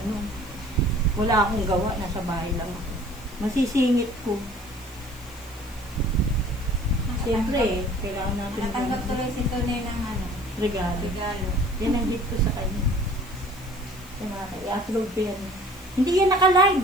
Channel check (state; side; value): noise; left; hiss, 23 dB below the sound